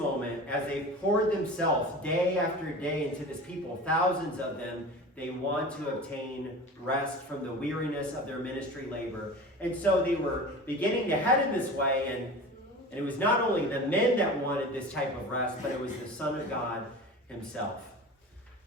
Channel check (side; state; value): both; normal; correlation 0.34